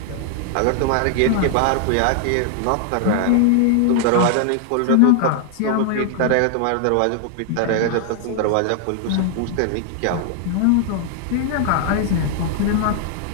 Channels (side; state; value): both; different; correlation 0.00